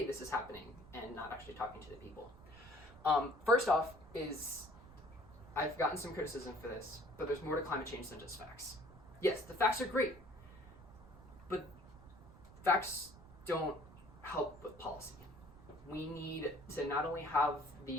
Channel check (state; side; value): noise; right; rumble, 19 dB below the sound